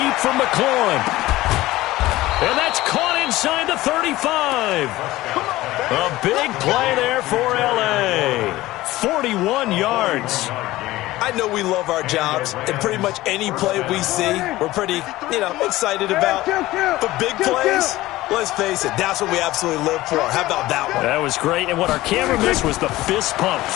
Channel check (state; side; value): quieter; right; 17.4 dB